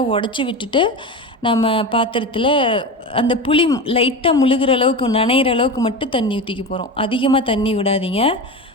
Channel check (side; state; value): both; normal; correlation 0.25